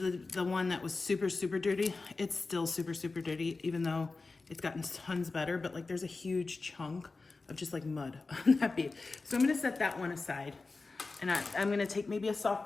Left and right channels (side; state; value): right; quieter; 3.8 dB